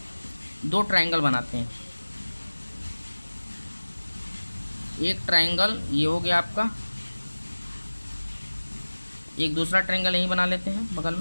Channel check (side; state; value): both; inverted; correlation -1.00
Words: दो ट्रायंगल बनाते हैं। एक ट्रायंगल ये हो गया आपका, एक दूसरा ट्रायंगल यहीं बना लेते हैं बगल